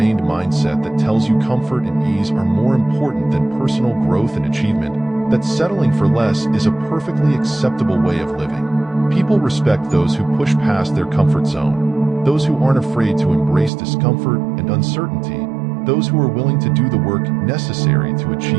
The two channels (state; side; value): drops out; left; at 13.7 s